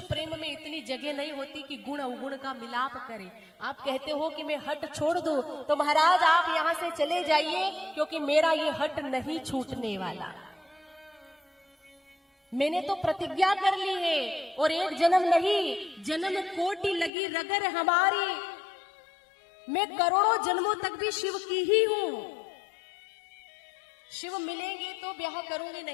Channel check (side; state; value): right; drops out; at 17.1 s